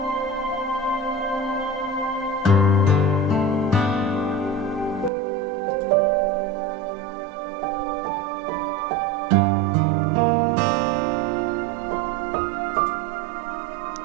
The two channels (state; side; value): drops out; left; at 5.1 s